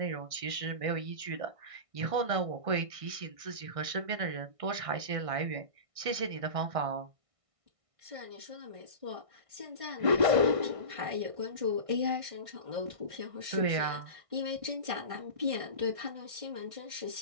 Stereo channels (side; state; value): left; late; 1.6 ms